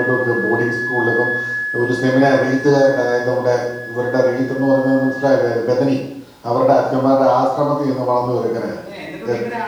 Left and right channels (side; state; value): both; identical; correlation 1.00